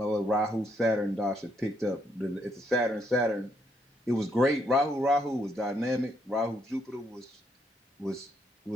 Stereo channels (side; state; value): both; normal; correlation 0.74